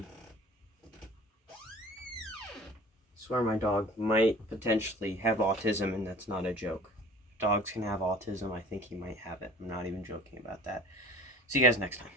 I swear my dog might potentially have autism, and that's not a joke. Dogs can have autism. I think he might have it. I'm not even joking about that. See you guys next time.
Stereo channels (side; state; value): both; normal; correlation 0.45